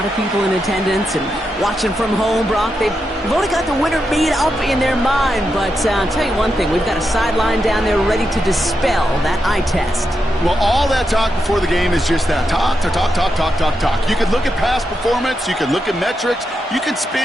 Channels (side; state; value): both; normal; correlation 0.86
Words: of people in attendance and watching from home, Brock, they've already got the winner made up in their mind. But I'll tell you one thing, we've got a sideline down there ready to dispel that eye test. Well, all that talk before the game is just that. Talk. You can look at past performance. You can look at metrics. You can